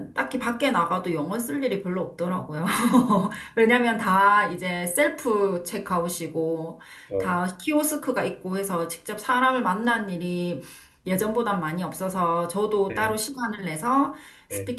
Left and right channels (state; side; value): identical; both; correlation 1.00